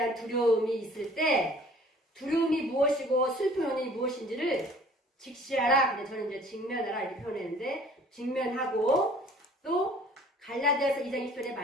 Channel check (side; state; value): both; normal; correlation 0.52